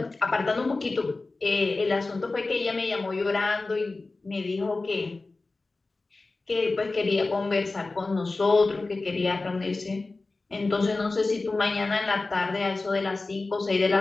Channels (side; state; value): right; quieter; 3.5 dB